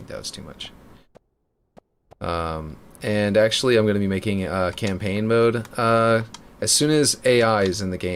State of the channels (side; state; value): both; identical; correlation 1.00